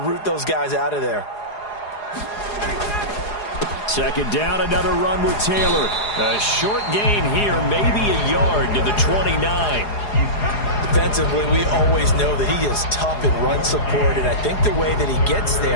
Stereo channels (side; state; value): right; late; 4.8 ms